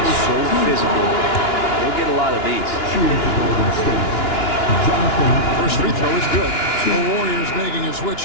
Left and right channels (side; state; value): right; late; 2.9 ms